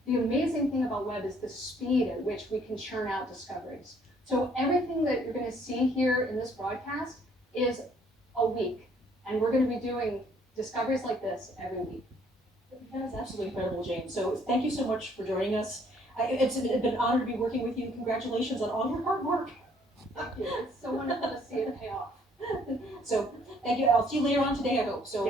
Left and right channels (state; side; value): normal; both; correlation 0.63